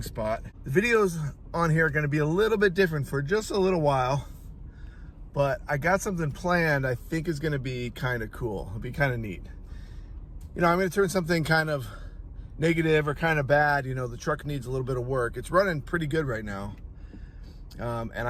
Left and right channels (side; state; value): both; identical; correlation 1.00